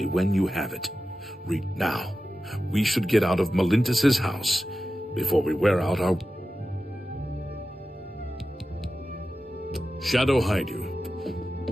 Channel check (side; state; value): both; normal; correlation 0.93